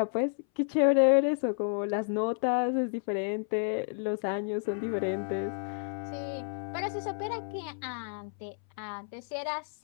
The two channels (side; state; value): right; silent; 57 dB below the other